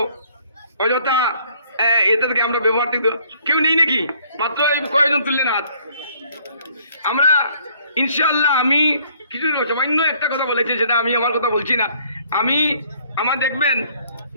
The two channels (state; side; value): inverted; both; correlation -0.61